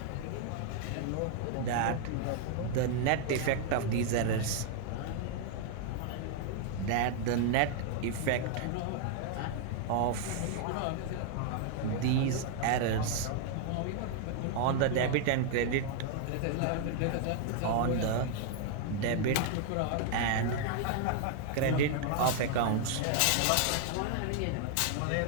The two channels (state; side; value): different; both; correlation 0.00